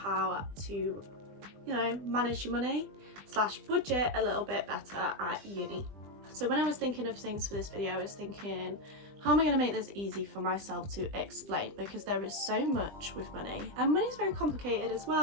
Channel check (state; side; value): late; left; 20 ms